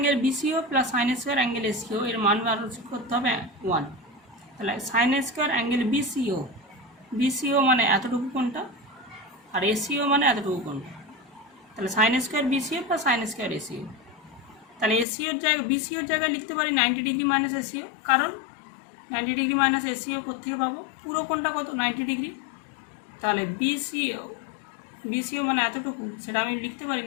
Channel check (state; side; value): drops out; right; at 15.1 s